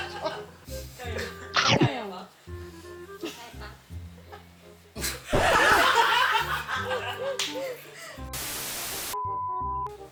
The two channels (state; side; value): identical; both; correlation 1.00